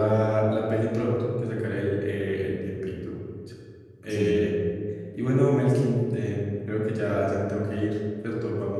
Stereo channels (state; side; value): identical; both; correlation 1.00